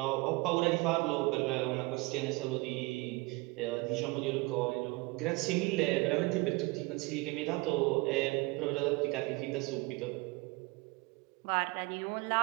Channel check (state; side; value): quieter; left; 24.6 dB